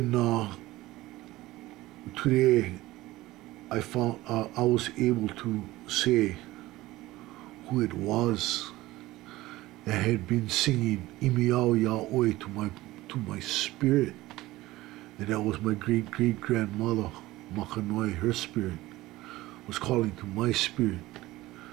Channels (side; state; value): left; quieter; 17.9 dB